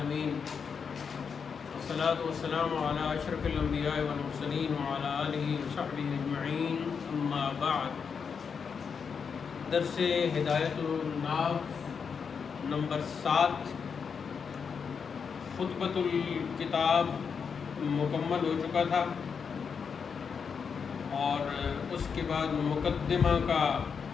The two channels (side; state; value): right; quieter; 6.2 dB